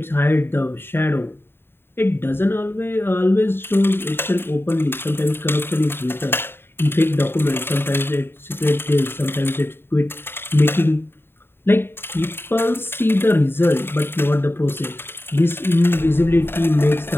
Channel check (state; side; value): late; right; 0.11 ms